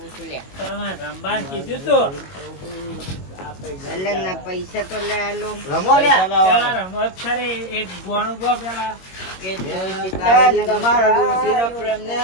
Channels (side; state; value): right; late; 22 ms